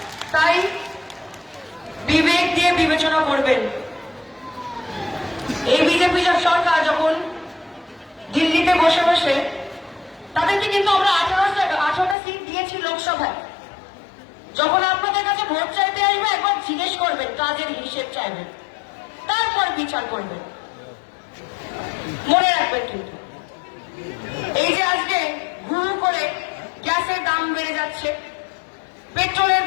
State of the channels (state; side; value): drops out; right; at 12.2 s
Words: তাই বিবেক দিয়ে বিবেচনা করবেন। এই বিজেপি সরকার যখন দিল্লিতে বসে বসে, তাদেরকে কিন্তু আমরা 18টা সিট দিয়েছি লোকসভায়। যখন আপনাদের কাছে ভোট চাইতে আসবে একবার জিজ্ঞেস করবেন, কাজের হিসেব চাইবেন, তারপর বিচার করবেন। মনে রাখবেন কিন্তু এই যে আজকে হুড় করে গ্যাসের দাম বেড়ে যাচ্ছে, পেট্রোলের